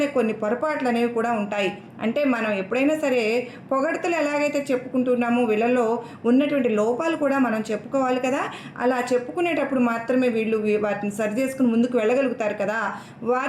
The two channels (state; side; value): identical; both; correlation 1.00